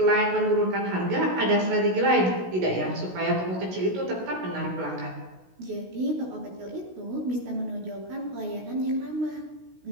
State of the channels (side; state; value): left; late; 16 ms